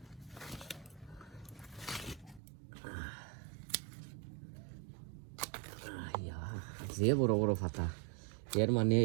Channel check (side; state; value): left; drops out; at 2.4 s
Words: যে বড় বড় ফাতা এর মানে